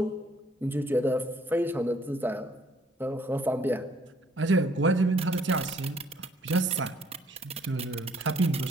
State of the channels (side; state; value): both; normal; correlation 0.63